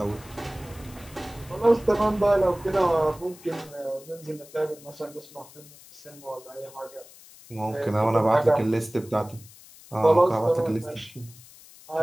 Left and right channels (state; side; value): noise; left; hiss, 21 dB below the sound